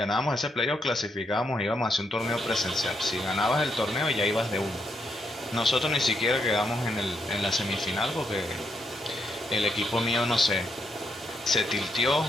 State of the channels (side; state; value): both; normal; correlation 0.79